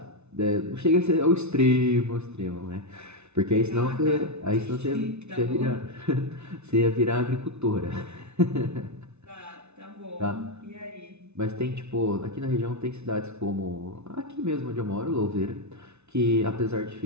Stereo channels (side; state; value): left; late; 0.81 ms